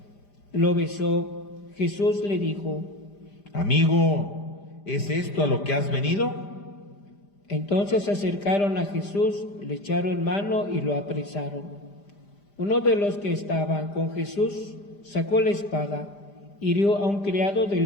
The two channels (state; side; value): late; right; 5.0 ms